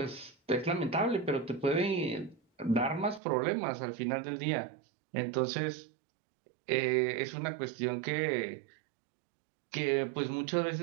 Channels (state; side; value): drops out; left; at 3.2 s